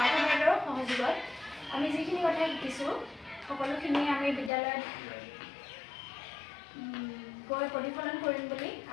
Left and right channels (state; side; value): drops out; right; at 4.5 s